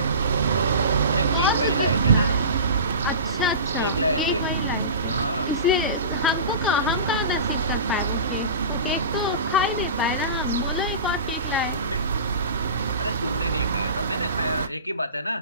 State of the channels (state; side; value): inverted; both; correlation -0.33